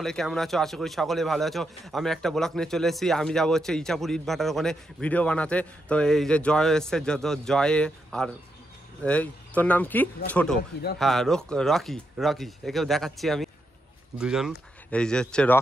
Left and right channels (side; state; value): both; normal; correlation 0.83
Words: কেমন আছো? আশা করি সকলে ভালো আছো। আমি একটা ব্লগ নিয়ে চলে এসেছি। আমি যাবো হচ্ছে ইচাপুর ইট ভাটার ওখানে ভিডিও বানাতে। তো এই যে জয় এসছে, যত জয়ে আর এই তোর নাম কি? ছোট, হ্যাঁ রকি। রকি একেও দেখাচ্ছি আমি দুজন। এই যে হচ্ছে